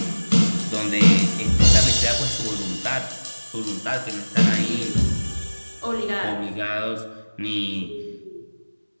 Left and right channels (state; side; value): inverted; both; correlation -1.00